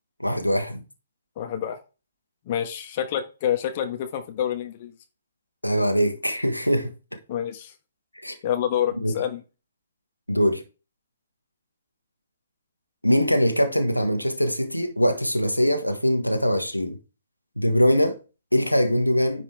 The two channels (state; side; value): inverted; both; correlation -0.88